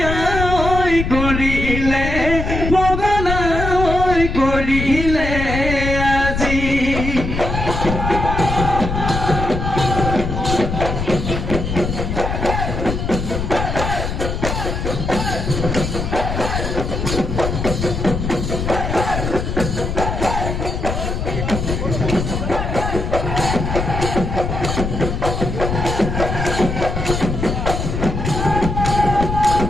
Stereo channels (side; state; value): left; noise; rumble, 3 dB below the sound